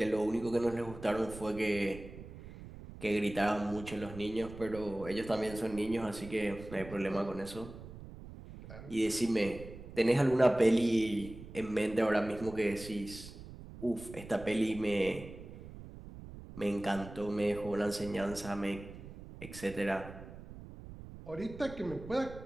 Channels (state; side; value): noise; right; rumble, 14 dB below the sound